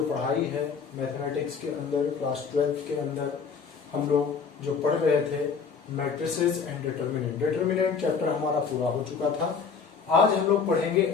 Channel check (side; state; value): right; quieter; 5.7 dB